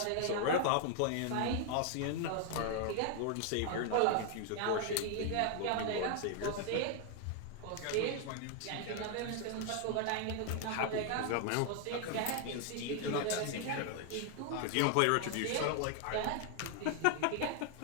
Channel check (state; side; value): different; both; correlation 0.00